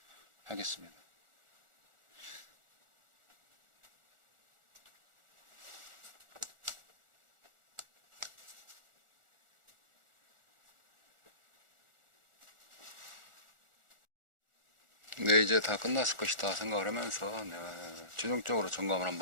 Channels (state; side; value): late; left; 1.4 ms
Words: 하겠습니다. 네, 이제 다 끝났을 것이다 생각을 하면서 최종적으로 점검을